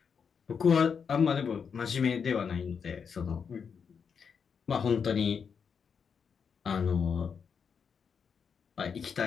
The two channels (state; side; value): quieter; right; 6.4 dB